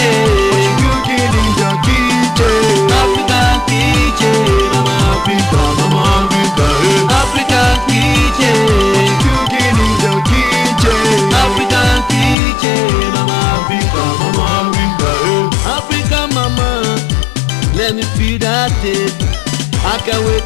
what you cooking in your kitchen? African kitchen, I'm Africa, African kitchen, what you cooking in your kitchen? African kitchen, I'm Africa, Africa mama, let me feel that taste. I can't wait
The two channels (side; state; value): right; drops out; at 12.4 s